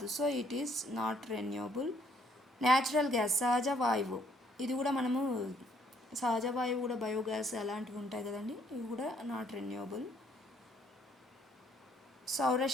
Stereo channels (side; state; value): both; normal; correlation 0.66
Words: so it is not renewable. Natural gas సహజ వాయువు, ఇది కూడా మనము సహజ వాయువు కూడా బయోగ్యాస్ అలాంటివి ఉంటాయి కదండి, ఇవి కూడా నాట్ రెన్యూవబుల్.